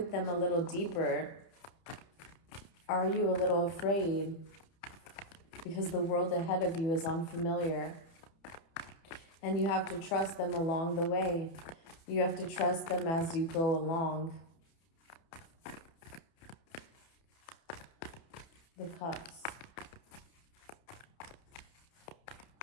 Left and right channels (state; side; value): late; right; 30 ms